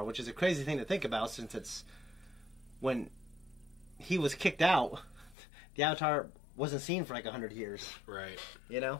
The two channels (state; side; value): drops out; right; at 5.4 s